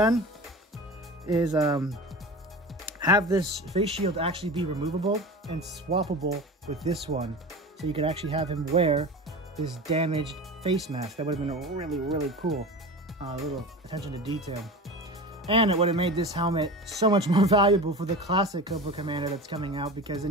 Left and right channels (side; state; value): both; normal; correlation 0.31